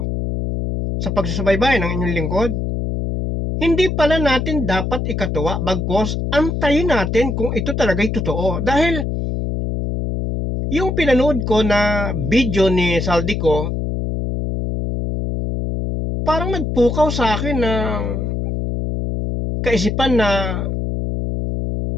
sa pagsusubaybay ng inyong lingkod, hindi pala natin dapat ikatuwa, bagkos antayin natin kung ito talaga'y totoo. Dahil yung pinanood ko na video ni Saldico, parang nagpukaw sa akin ng kaisipan na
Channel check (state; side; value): noise; left; hum, 2 dB below the sound